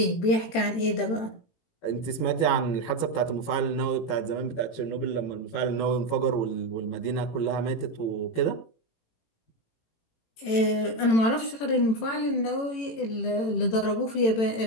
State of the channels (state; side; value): late; right; 18 ms